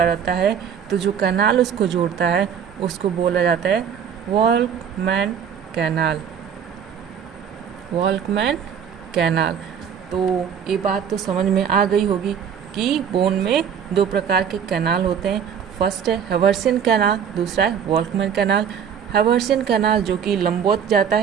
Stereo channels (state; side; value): quieter; left; 7.8 dB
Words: रहता है, तो जो कैनाल उसको जोड़ता है उसको बोला जाता है वॉल्कमैन कैनाल। वॉल्कमैन कैनाल। तो ये बात तो समझ में आ गई होगी कि बोन में दो प्रकार के कैनाल होते हैं। फर्स्ट है हेर्वेसियन कैनाल, दूसरा है वॉल्कमैन कैनाल। हेर्वेसियन कैनाल जो कि लंबवत जाता